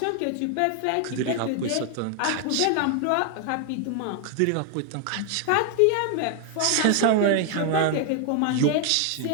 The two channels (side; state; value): both; different; correlation 0.00